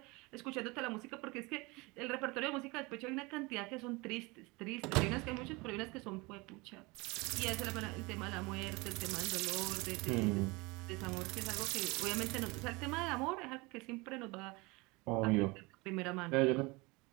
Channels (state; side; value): quieter; left; 25.2 dB